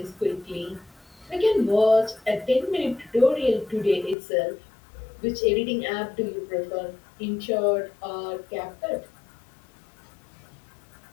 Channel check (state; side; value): drops out; right; at 4.2 s